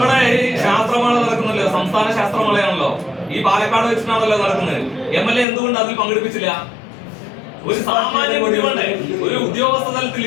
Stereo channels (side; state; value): right; drops out; at 5.5 s